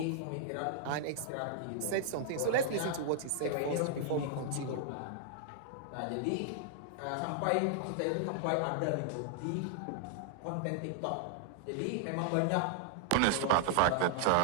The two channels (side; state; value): both; different; correlation -0.01